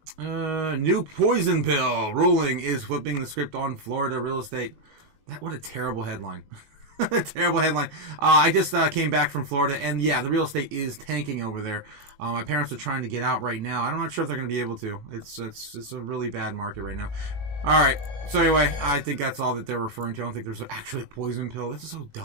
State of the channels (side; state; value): left; late; 19 ms